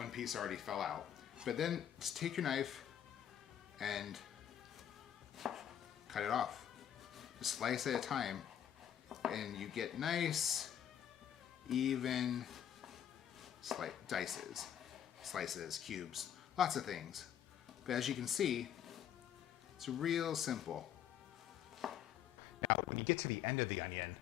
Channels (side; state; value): right; quieter; 9.8 dB